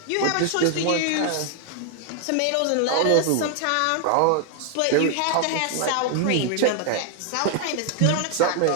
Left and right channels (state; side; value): different; both; correlation 0.00